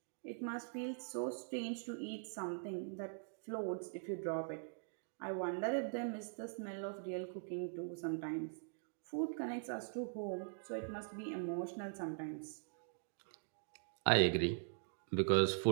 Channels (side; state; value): left; silent; digital silence